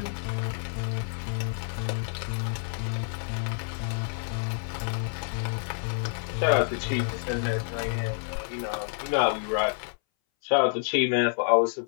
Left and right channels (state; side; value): silent; right; 59 dB below the other